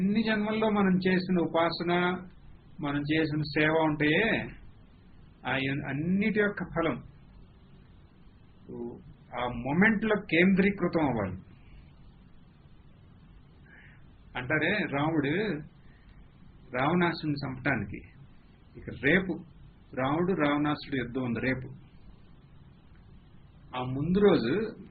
జన్మల్లో మనం చేసిన ఉపాసన, మనం చేసిన సేవ ఉంటాయే అన్నిటి యొక్క ఫలం ఆ మొమెంట్ లో కేంద్రీకృతం అవ్వాలి. అంటారే రాముడు రావణాసుడిని చంపటానికి ఇక రేపు రాముడు రావణాసుడు యుద్ధం ఉంది రేపు. ఆ ముందు రోజు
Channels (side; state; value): both; identical; correlation 1.00